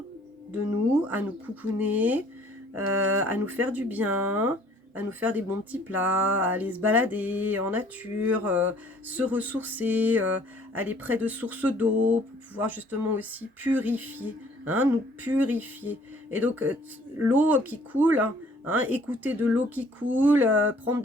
de nous, à nous coucouner, à nous faire du bien, à nous faire des bons petits plats, à aller se balader en nature, se ressourcer, aller près de sources d'eau pour pouvoir justement aussi purifier, hein, nous purifier. Et donc, l'eau qui coule, hein, écouter de l'eau qui coule, prendre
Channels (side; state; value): both; normal; correlation 0.57